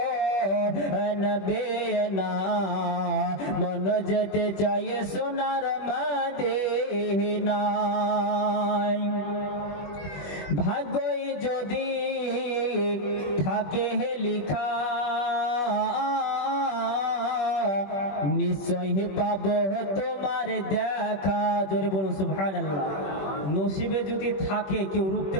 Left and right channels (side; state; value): right; late; 21 ms